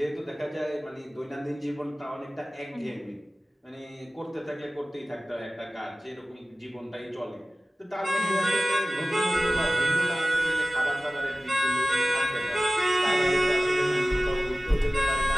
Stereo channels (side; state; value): both; normal; correlation 0.96